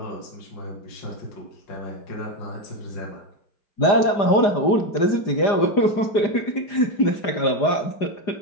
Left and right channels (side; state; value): right; late; 4.9 ms